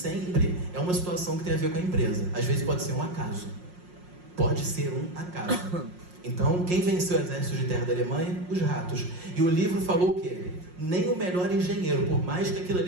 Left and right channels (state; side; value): late; left; 5.6 ms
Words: é uma situação que tem a ver com a empresa. Às vezes pode ser um acaso. Pode ser um acaso. Então, quem venceu o exército de terra da Alemanha? Os ratos. E o livro falou o quê? Nem o melhor engenheiro, por mais que aquilo